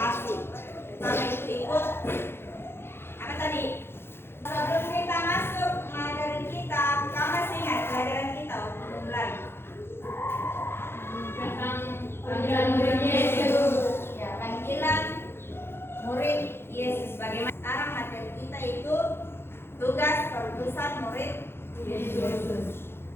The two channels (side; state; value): right; late; 0.11 ms